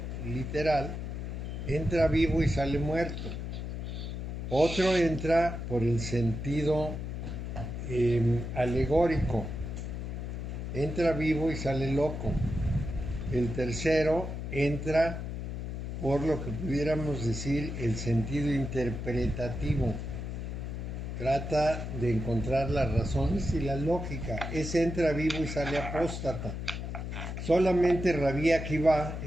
literal, entra vivo y sale muerto. Otro entra por el sentido alegórico, entra vivo y sale loco. El tercero entra por lo que pudiéramos decir el sentido interpretativo. Trata de encontrar las razones y la lógica. Ese entra vivo y sale apóstata. Solamente Rabí Akiva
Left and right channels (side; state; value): left; noise; hum, 5 dB below the sound